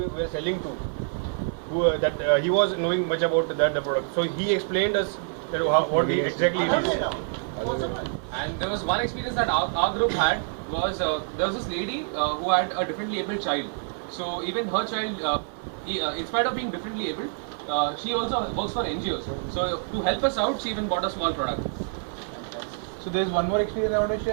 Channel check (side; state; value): left; silent; 60 dB below the other